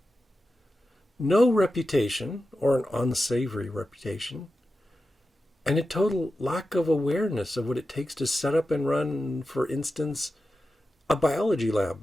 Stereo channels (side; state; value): both; normal; correlation 0.92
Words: no reputation or an unsavory reputation, and a total lack of awareness of what it takes to set up and run, for instance, a biology lab,